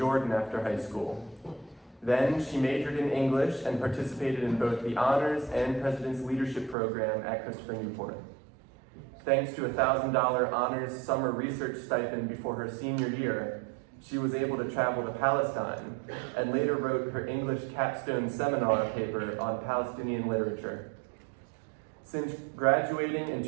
after high school. Then she majored in English and participated in both the Honors and President's Leadership Program at Christopher Newport. Thanks to a $1,000 honors summer research stipend before her senior year, she was able to travel to Palestine and later wrote her English capstone seminar paper on Palestinian literature. Since graduating in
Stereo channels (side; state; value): left; drops out; at 6.8 s